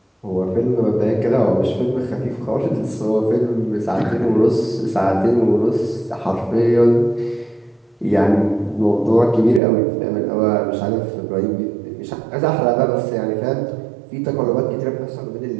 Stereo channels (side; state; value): left; drops out; at 9.6 s